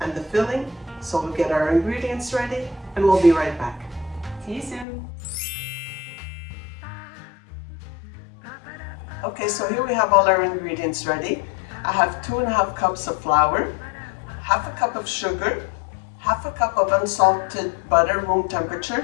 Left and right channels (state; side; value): drops out; right; at 4.9 s